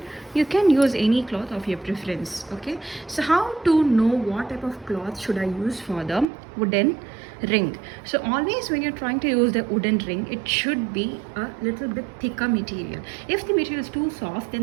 You can use any cloth of your preference. Okay, so how to know what type of cloth should I use for the wooden ring? So always when you're trying to use the wooden ring, it should be a little bit thicker material. If the material is too soft,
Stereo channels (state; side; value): drops out; left; at 6.2 s